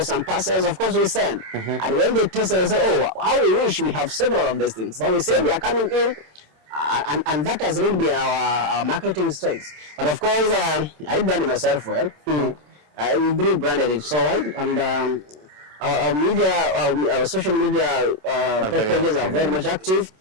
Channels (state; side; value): late; left; 27 ms